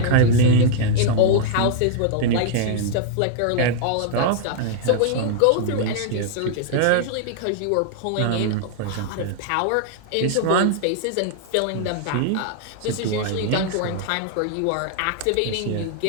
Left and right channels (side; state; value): both; different; correlation -0.01